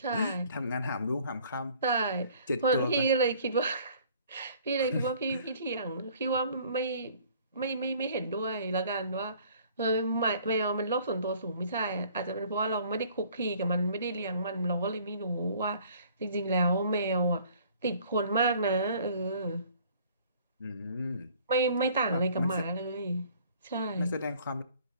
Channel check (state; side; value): inverted; both; correlation -0.55